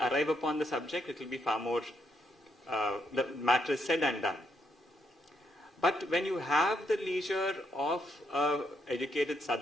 upon the subject, it will be far more, the matter is said and done. But when you have the leisure of educated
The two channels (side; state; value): both; normal; correlation 0.76